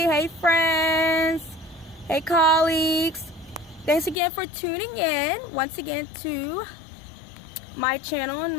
friends, hey colleagues. Thanks again for tuning in once again to my channel and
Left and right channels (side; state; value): right; drops out; at 4.2 s